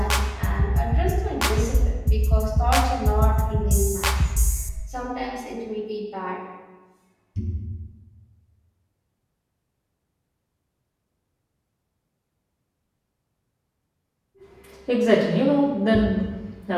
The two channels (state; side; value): identical; both; correlation 1.00